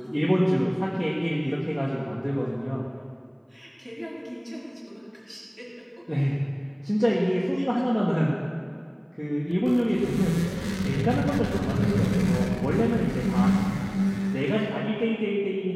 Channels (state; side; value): identical; both; correlation 1.00